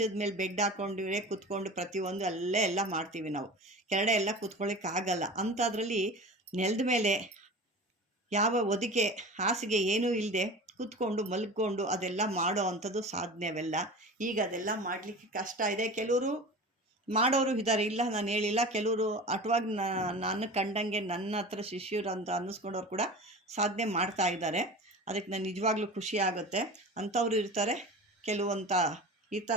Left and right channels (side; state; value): both; normal; correlation 0.34